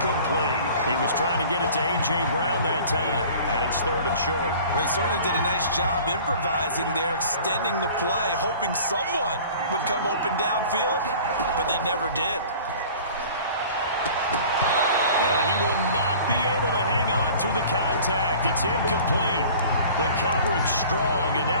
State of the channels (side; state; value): both; inverted; correlation -0.45